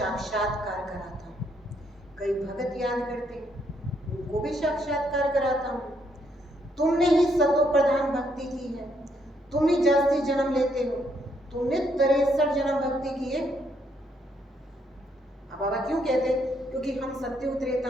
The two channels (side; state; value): both; normal; correlation 0.73